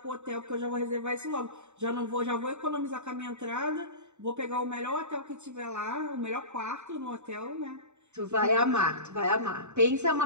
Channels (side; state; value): left; late; 0.83 ms